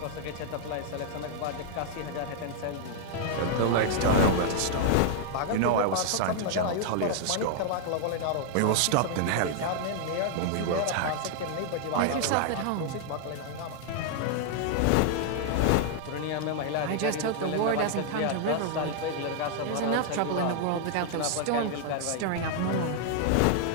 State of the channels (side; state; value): both; different; correlation 0.00